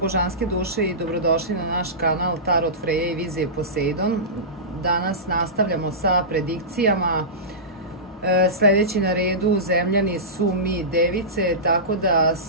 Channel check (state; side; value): normal; both; correlation -0.19